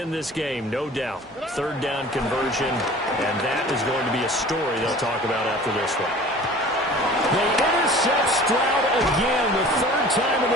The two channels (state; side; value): normal; both; correlation 0.44